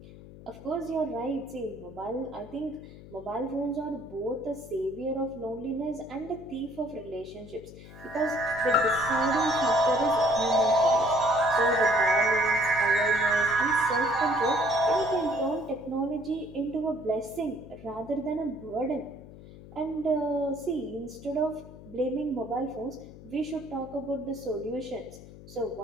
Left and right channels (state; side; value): noise; left; hum, 17 dB below the sound